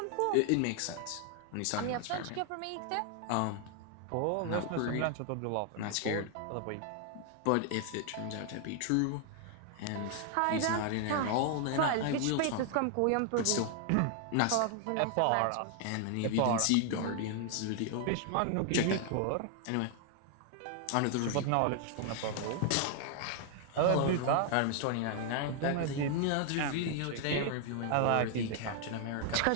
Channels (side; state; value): both; different; correlation 0.00